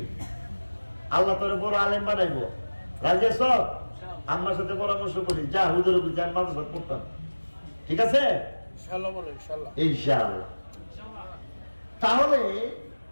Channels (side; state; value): both; inverted; correlation -1.00